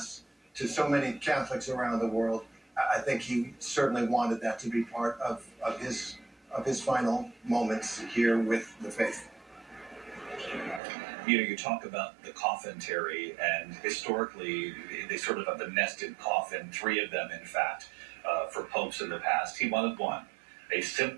to so many Catholics around the world, I think he certainly wanted that to be part of his final moments here with the faith. You know, you talk about the coffin, Terry, and historically, they sort of have the nested coffin, three of them, in fact, for popes in the past. He wanted one, a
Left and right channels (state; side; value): drops out; left; at 10.8 s